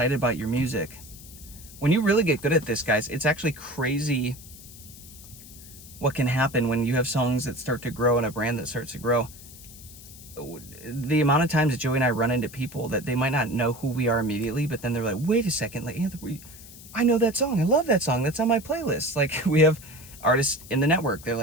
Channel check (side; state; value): left; noise; hiss, 18 dB below the sound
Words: about your music. When you really get good at this, guys, it's actually crazy what can happen when you have songs that start to grow and a brand that starts to grow. The amount of times that Joey and I run into people that they might not know who we are immediately, but then they're like, wait a second, like, Anthony, I know that song. I love that song. That's on my playlist. Like, we have artists in the network. They're